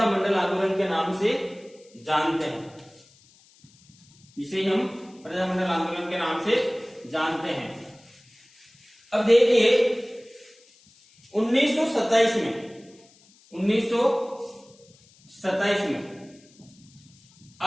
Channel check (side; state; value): left; noise; hiss, 29 dB below the sound